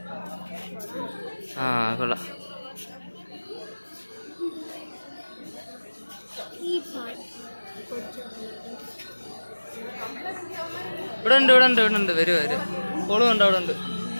ആ കൊള്ളാം. ഇവിടെ ഉണ്ട് ഇവിടെ ഉണ്ട് ഇവിടെ ഉണ്ട്. വരും വരും. കോളും ഉണ്ട് അവിടെ ഉണ്ട്.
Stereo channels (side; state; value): both; inverted; correlation -1.00